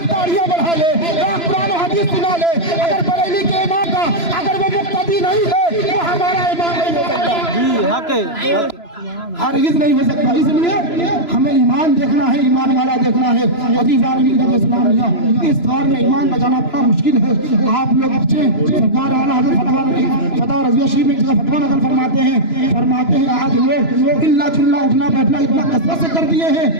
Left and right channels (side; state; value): right; late; 3.0 ms